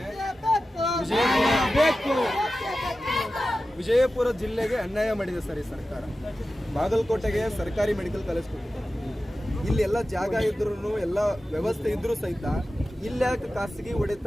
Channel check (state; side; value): normal; both; correlation 0.94